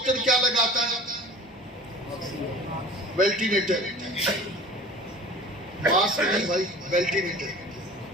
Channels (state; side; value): normal; both; correlation 0.41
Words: کیا لگاتا ہے؟ وینٹیلیٹر. ماسک نہیں بھائی، وینٹیلیٹر.